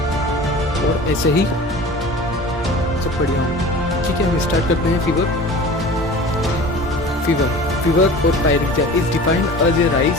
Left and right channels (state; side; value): normal; both; correlation 0.40